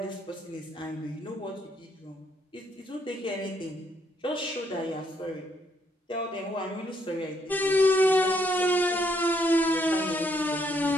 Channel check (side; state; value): both; normal; correlation 0.72